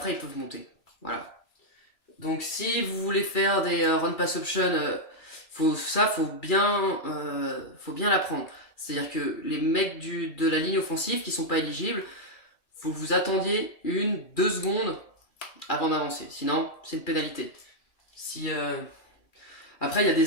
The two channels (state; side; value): late; right; 2.4 ms